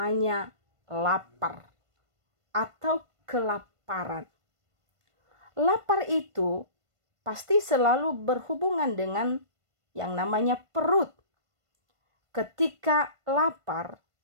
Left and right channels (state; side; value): late; left; 1.5 ms